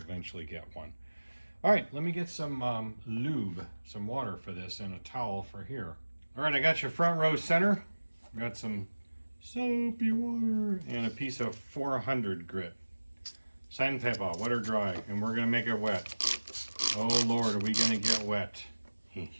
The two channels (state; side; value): inverted; both; correlation -1.00